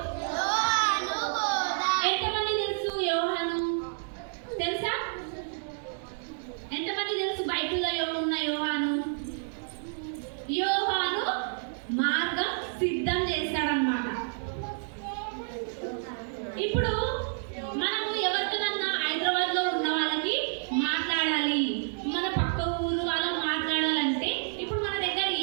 యోహాను బోధ. ఎంతమంది తెలుసు యోహాను? తెలుసా? ఎంతమంది తెలుసు బైబిల్లో ఉన్న యోహాను? యోహాను మార్గం సిద్ధం చేస్తాడన్నమాట. ఇప్పుడు మనము ఎవరితోనన్నా హైదరాబాద్ లో ఉన్న వాళ్ళకి మాట్లాడాలి, మన పక్క ఊరు వాళ్ళకి మాట్లాడాలంటే ఇప్పుడు మన దగ్గర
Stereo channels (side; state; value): left; silent; digital silence